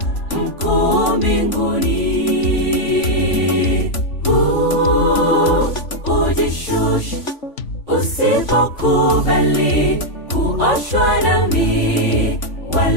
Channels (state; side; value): late; right; 3.5 ms